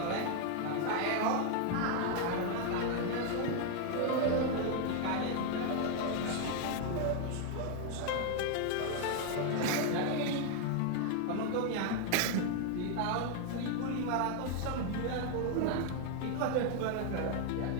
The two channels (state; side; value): different; both; correlation 0.00